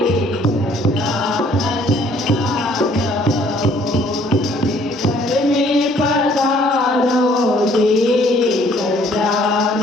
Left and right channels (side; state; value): both; normal; correlation 0.60